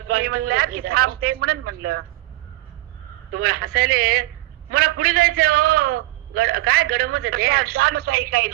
थांबते म्हणून म्हणलं. तुम्हाला हसायले मला पुढे जायचंय. हो काय गडमच आहे ते. ताई काही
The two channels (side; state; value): left; quieter; 18.6 dB